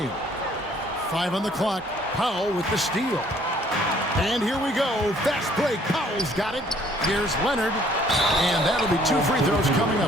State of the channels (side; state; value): both; normal; correlation 0.60